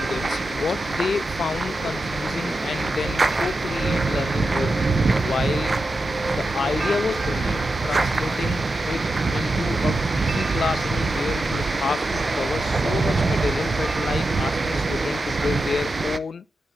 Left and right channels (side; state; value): both; normal; correlation 0.89